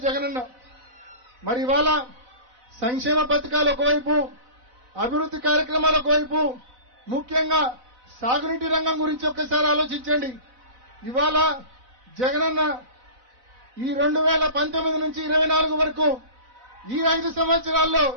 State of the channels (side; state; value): left; late; 4.0 ms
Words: జగనన్న. మరి ఇవాళ సంక్షేమ పథకాలు ఒకవైపు, అభివృద్ధి కార్యక్రమాలు ఒకవైపు, ముఖ్యంగా సాగునీటి రంగం గురించి ఒక్కసారి ఆలోచించండి. ఇవాళ జగనన్న ఈ 2019 నుంచి 24 వరకు ఈ 5 సంవత్సరాల్లో